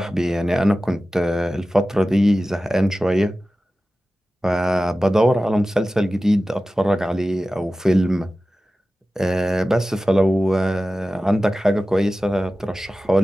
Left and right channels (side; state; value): both; normal; correlation 0.95